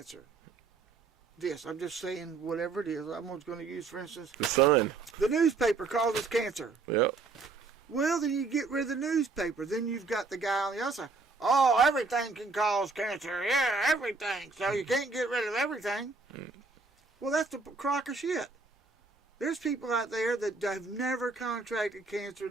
This, I'm just saying whatever it is. I'm just going to use, for instance, the sun. The newspaper causes cancer. Yep. Well, then you get rid of the newspaper. Then you've got the guy on the other side. Oh, everything can cause cancer. Yeah, everything. So you can't get rid of everything. Well, that's the crock of shit. There's people out there that have never contracted cancer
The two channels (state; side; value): quieter; left; 4.1 dB